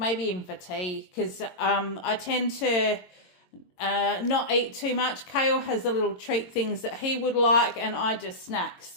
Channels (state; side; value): late; right; 22 ms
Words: even for tea, because I tend to not eat too much. Kale has the little treat things that he would like, and I just snack.